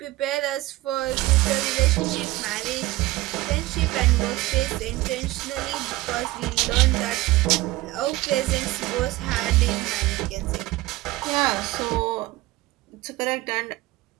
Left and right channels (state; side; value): quieter; left; 18.4 dB